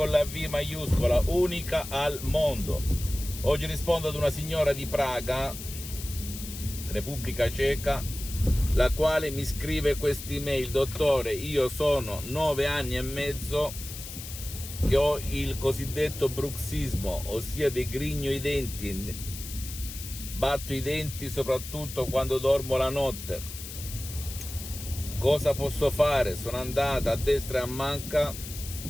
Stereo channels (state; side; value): noise; left; hiss, 11 dB below the sound